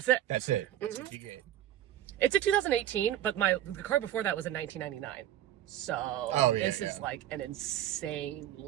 it. That's it. That's what you get. It's a 2018, but the car before that was in 1999. So this is like an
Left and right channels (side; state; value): left; quieter; 12.5 dB